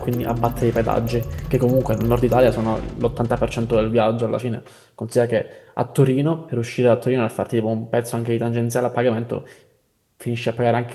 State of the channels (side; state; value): both; identical; correlation 1.00